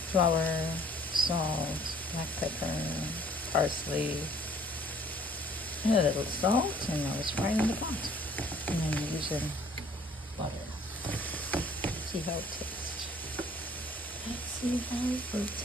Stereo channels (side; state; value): both; normal; correlation 0.56